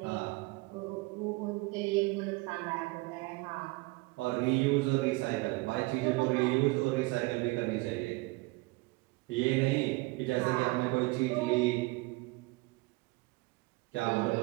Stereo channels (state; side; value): quieter; left; 24.1 dB